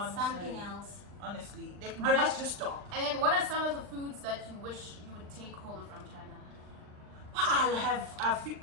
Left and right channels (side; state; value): left; late; 39 ms